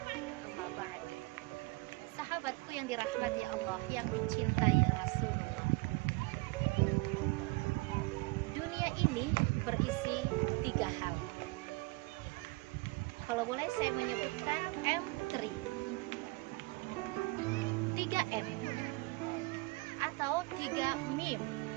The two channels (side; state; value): left; quieter; 24.8 dB